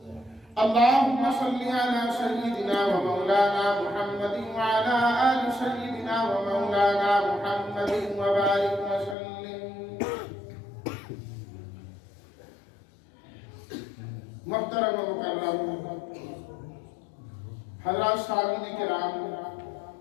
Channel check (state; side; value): drops out; right; at 9.2 s